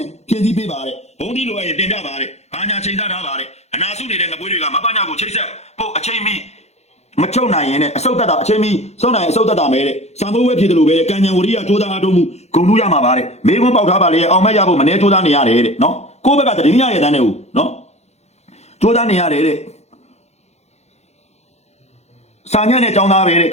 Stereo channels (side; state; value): right; late; 0.31 ms